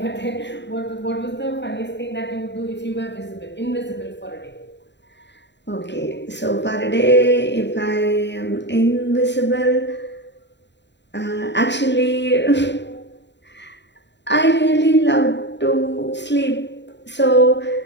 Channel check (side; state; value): right; late; 0.52 ms